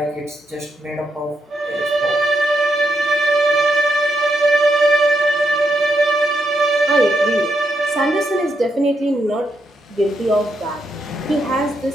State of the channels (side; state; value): both; normal; correlation 0.81